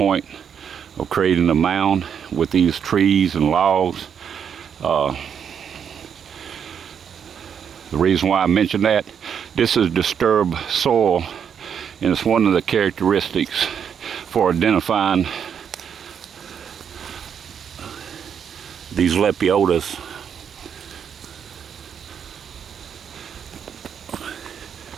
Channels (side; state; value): left; quieter; 7.8 dB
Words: of creating a mound with these trees and logs. The reason why I mention that, this is disturbed soil, and it's one of the characteristics for identifying these lepiotas.